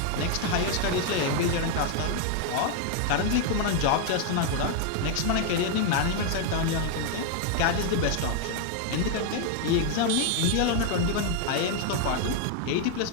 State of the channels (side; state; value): both; different; correlation 0.00